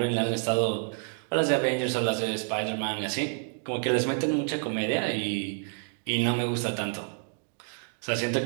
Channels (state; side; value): silent; left; 59 dB below the other